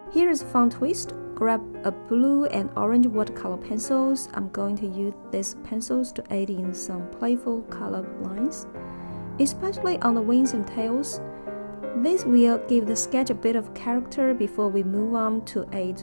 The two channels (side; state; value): both; inverted; correlation -1.00